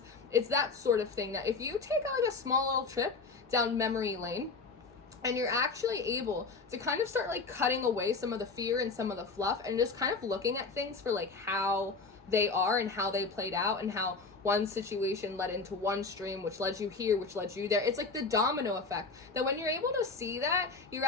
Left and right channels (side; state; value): right; quieter; 4.2 dB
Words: It's that sort of thing that if you take like a small little trip down memory lane and you're actually able to kind of start like cutting away some of the fear and some of the fluff and just kind of looking at things for like how they are and how they played out and how one situation led into one stream, which led you here, which led you there. It's like the domino effect, that when you're able to see that, you're